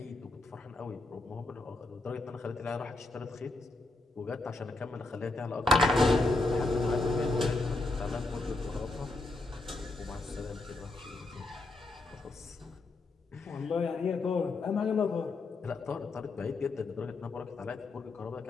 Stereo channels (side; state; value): right; quieter; 3.2 dB